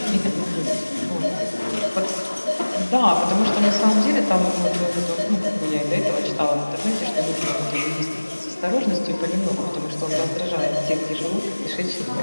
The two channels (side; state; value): both; inverted; correlation -1.00